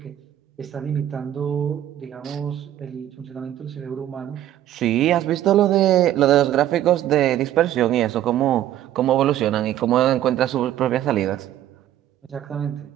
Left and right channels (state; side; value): quieter; left; 12.2 dB